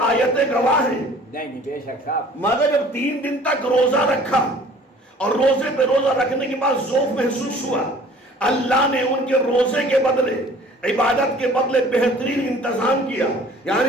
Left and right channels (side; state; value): both; normal; correlation 0.51